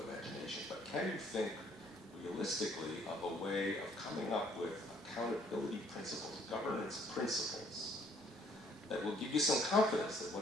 imagination, but can you think realistically of a way of coming up with accountability principles, governance principles, that will give you some confidence that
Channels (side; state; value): both; normal; correlation 0.62